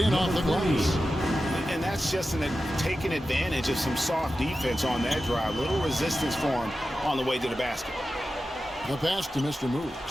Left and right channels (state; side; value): normal; both; correlation 0.93